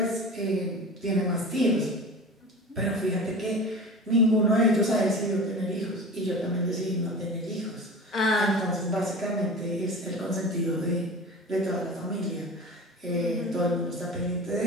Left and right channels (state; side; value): normal; both; correlation 0.34